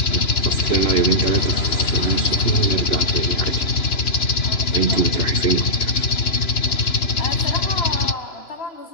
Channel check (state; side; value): late; right; 3.0 ms